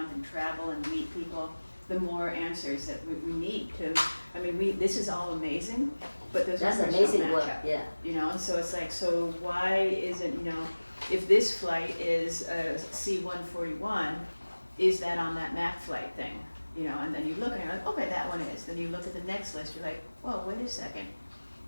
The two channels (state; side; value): inverted; both; correlation -1.00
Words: and travel and meet people, the more answers that we need to, this is all amazing, but those That's numbers amazing don't work. match up. Yeah. And so it's like, so why isn't, if this flight is a C-141, is that on that MAC flight thing? And then you look and you're like, okay, that one is. Then you look at the next list, you're like, whoa, wait a second.